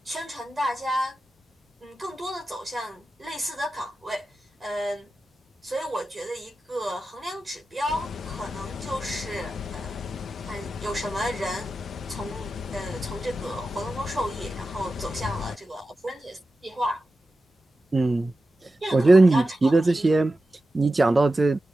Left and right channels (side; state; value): both; normal; correlation 0.92